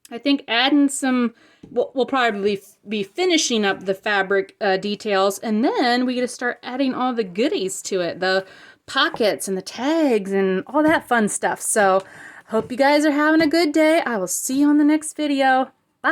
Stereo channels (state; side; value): identical; both; correlation 1.00